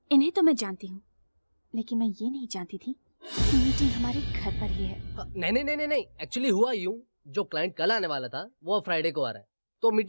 इन्हें तो मैं जानती हूँ, लेकिन मैं ये नहीं जानती थी कि मीटिंग हमारे घर पर ही है। नहीं, एक्चुअली हुआ यूं, जो क्लाइंट कल आने वाला था वो अब फ्राइडे को आ रहा है, तो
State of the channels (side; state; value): both; inverted; correlation -1.00